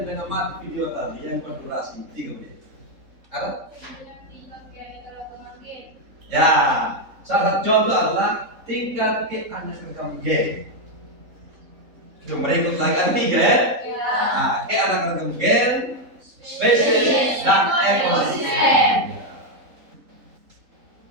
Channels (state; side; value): late; left; 3.8 ms